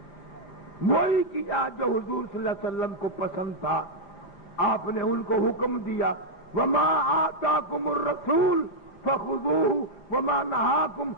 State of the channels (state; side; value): late; right; 5.8 ms